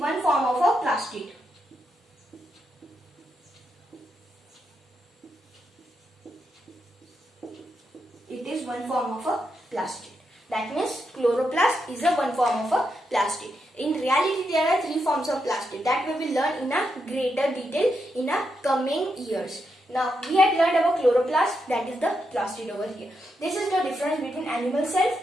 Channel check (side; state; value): both; normal; correlation 0.83